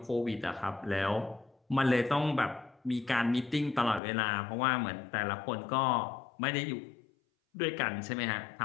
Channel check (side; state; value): right; drops out; at 4.0 s